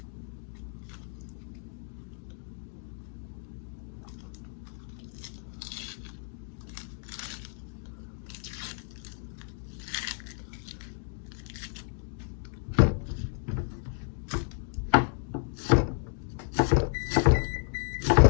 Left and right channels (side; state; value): right; silent; 57 dB below the other